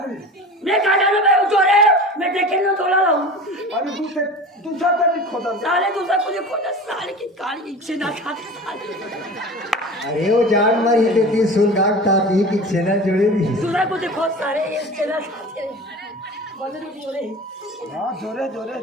मैं कहा जानो मैं उतरे मैं देखे ना तोला लाऊं अरे दूसरा तक खोदा साले दूसरा कुछ खोदा साले की काली छेना खाते साले अरे वो जान मारी देती सुन गाट ताती कि छेना जोड़े दी दूसरा कुछ खोद सारे ये छेना खाते बंद नहीं हो रहे हाँ जोरे जोरे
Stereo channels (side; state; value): both; normal; correlation 0.35